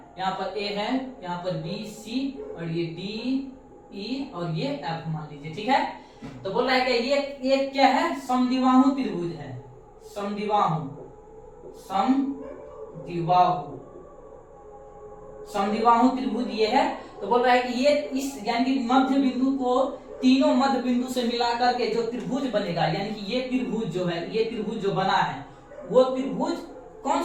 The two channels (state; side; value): identical; both; correlation 1.00